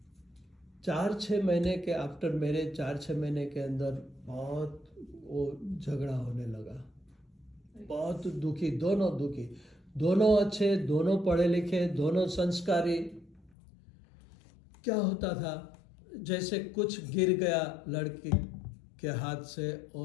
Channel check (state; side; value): drops out; right; at 13.5 s